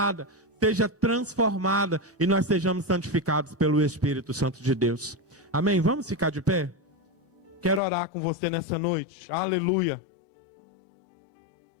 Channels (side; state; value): right; drops out; at 7.8 s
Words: seja transformada e nós sejamos santificados pelo Espírito Santo de Deus. Amém? Vamos ficar de pé? Quero orar com você nessa noite. Aleluia.